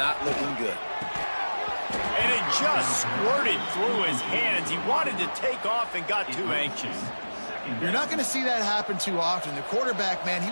looking good. And it just squirted through his hands. He wanted to take off and got too anxious. You're not going to see that happen too often. The quarterback, man, he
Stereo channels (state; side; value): inverted; both; correlation -1.00